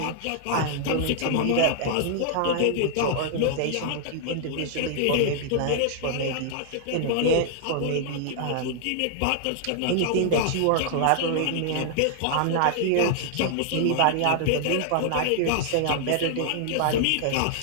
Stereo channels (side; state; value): both; different; correlation -0.01